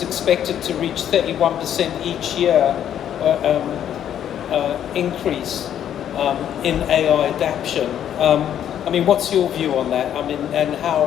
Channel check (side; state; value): right; quieter; 10.0 dB